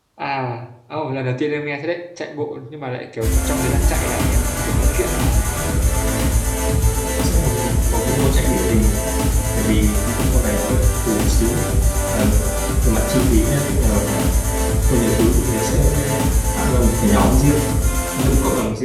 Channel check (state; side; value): identical; both; correlation 1.00